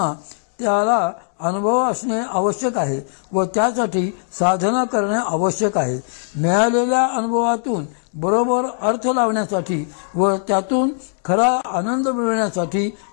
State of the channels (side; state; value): right; silent; digital silence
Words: त्याला अनुभव असणे आवश्यक आहे व त्यासाठी साधना करणे आवश्यक आहे. मिळालेल्या अनुभवातून बरोबर अर्थ लावण्यासाठी व त्यातून खरा आनंद मिळवण्यासाठी